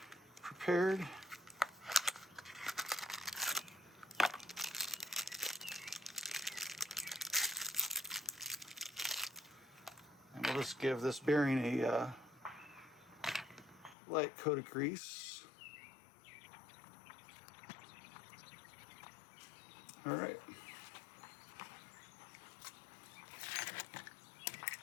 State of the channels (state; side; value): drops out; right; at 14.0 s